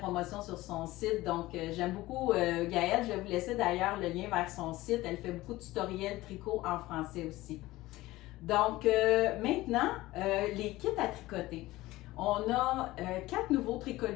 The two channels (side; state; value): right; quieter; 18.1 dB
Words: sur son site. Donc, j'aime beaucoup Gaëlle. Je vais vous laisser d'ailleurs le lien vers son site. Elle fait beaucoup de tutoriels tricot en français aussi. Donc, maintenant, les kits à tricoter. On a 4 nouveaux